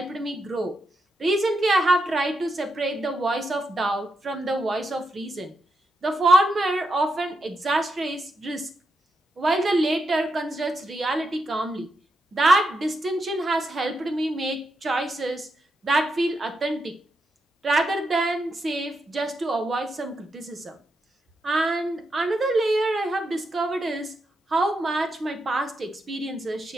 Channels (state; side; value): normal; both; correlation 0.83